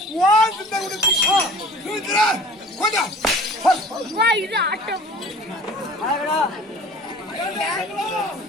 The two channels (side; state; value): both; normal; correlation 0.44